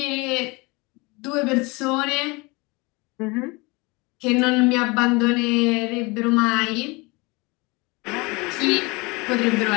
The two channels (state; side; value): quieter; right; 25.8 dB